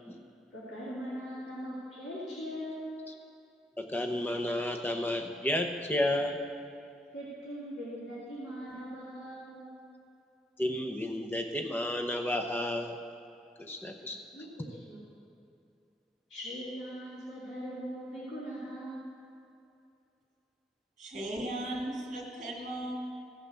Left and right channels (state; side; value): normal; both; correlation 0.73